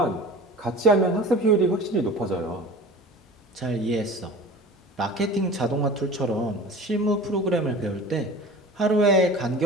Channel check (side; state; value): both; normal; correlation 0.38